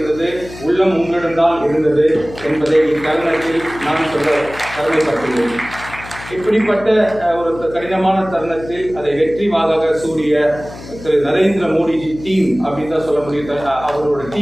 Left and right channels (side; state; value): left; noise; hum, 15 dB below the sound